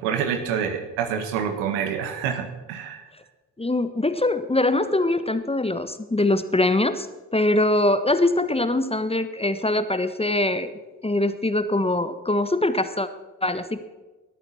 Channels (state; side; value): normal; both; correlation 0.49